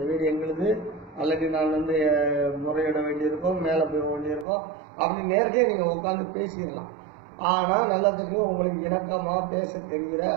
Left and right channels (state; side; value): drops out; left; at 4.5 s